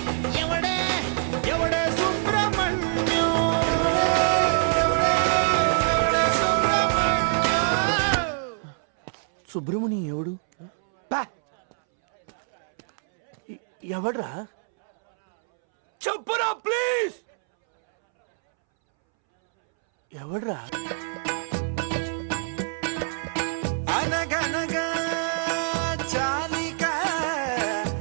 ఎవడే ఎవడే సుబ్రహ్మణ్యం. సుబ్రహ్మణ్యం ఎవడు? పా! ఎవడ్రా? చెప్పురా ప్లీజ్. ఎవడ్రా? అనగనగా చాలిక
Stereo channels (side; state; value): left; silent; 62 dB below the other